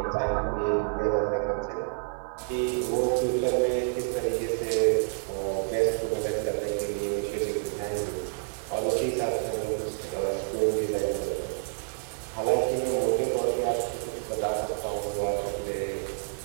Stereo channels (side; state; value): left; silent; digital silence